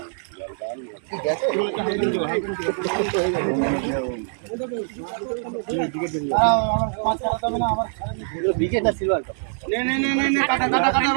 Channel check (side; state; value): left; silent; digital silence